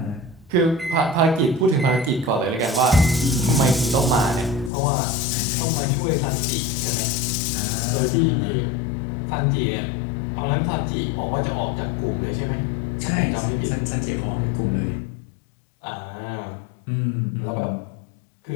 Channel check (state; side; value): drops out; right; at 4.7 s